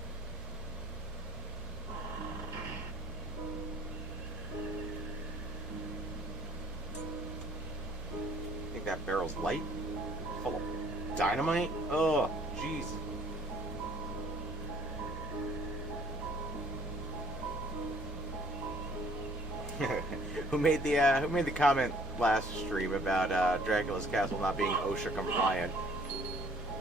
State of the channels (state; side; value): normal; both; correlation 0.57